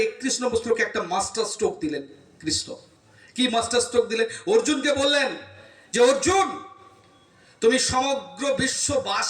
31 নম্বর শ্লোকে একটা মাস্টার স্ট্রোক দিলেন কৃষ্ণ। কি মাস্টার স্ট্রোক দিলেন? অর্জুনকে বললেন যে অর্জুন, তুমি সমগ্র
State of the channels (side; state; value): both; identical; correlation 1.00